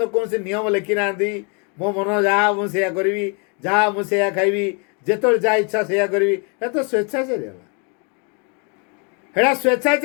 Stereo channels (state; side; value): quieter; right; 35.9 dB